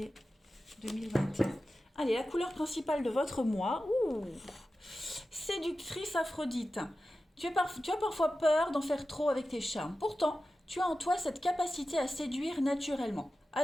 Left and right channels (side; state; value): both; normal; correlation 0.93